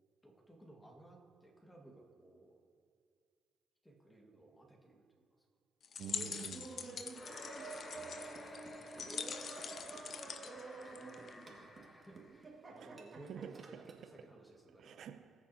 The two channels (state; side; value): normal; both; correlation 0.73